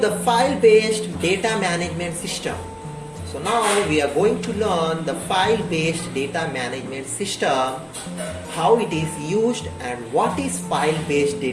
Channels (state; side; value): identical; both; correlation 1.00